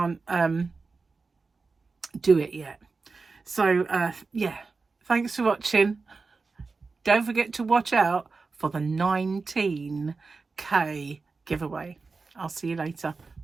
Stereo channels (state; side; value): quieter; left; 4.2 dB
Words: do it yet. So yeah, thanks for watching. Don't forget to watch out for the 19K giveaway. I'll see you later.